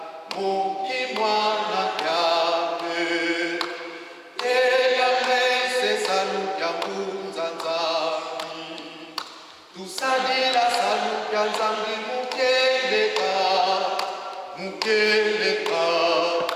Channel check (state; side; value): identical; both; correlation 1.00